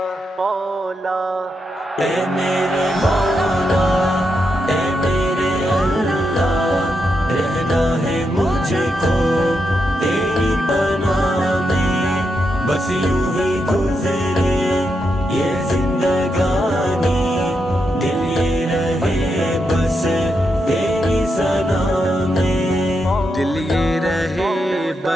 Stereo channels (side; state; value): both; normal; correlation 0.84